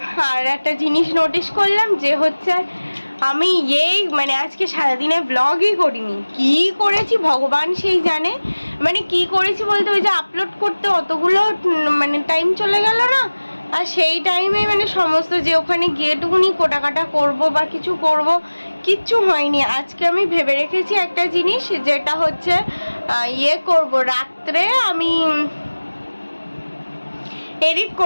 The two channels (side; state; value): both; inverted; correlation -1.00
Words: আর একটা জিনিস নোটিস করলাম যে হচ্ছে আমি মানে আজকে সারাদিনে ব্লগই করিনি। কি করেছি ভগবান সেই জানে, মানে কি করেছি বলতে ওই যে আপলোড করতে অতগুলো মানে টাইম চলে গেল না, আর সেই টাইমে মানে সমস্ত যে ওখানে গিয়েটুকুনি কোটাকাটা করব বা কিছু করব, কিচ্ছু হয়নি। আজকে আমি ভেবে রেখেছি একটা জিনিস, যেটা হচ্ছে করব রাত্রে আমি এডিট